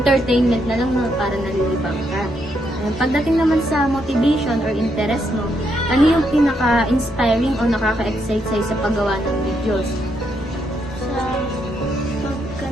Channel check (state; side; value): normal; both; correlation 0.77